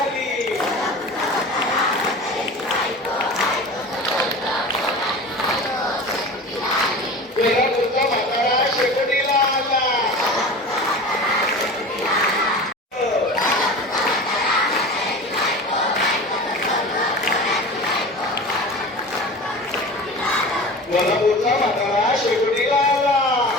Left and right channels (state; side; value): normal; both; correlation 0.34